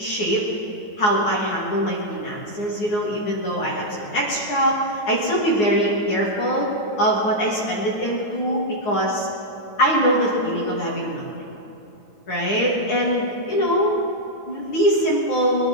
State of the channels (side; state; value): right; late; 9.6 ms